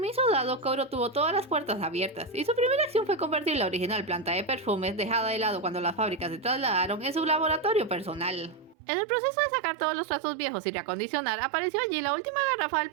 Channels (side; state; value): left; drops out; at 8.8 s